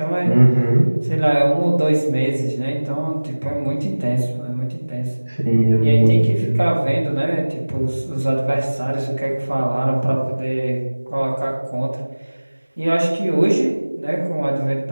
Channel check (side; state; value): both; inverted; correlation -1.00